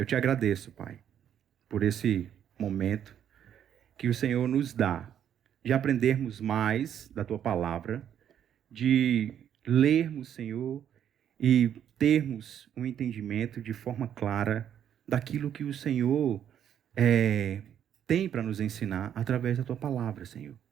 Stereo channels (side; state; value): left; quieter; 9.6 dB